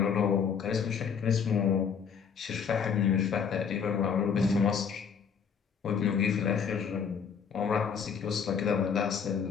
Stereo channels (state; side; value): quieter; right; 6.7 dB